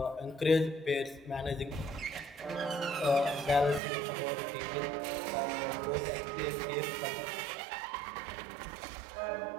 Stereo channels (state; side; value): drops out; left; at 3.8 s